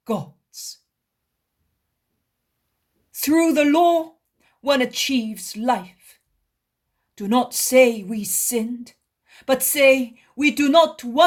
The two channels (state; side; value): identical; both; correlation 1.00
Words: God's. Through the law, one achieves life. Do not say we sinned, but say we do not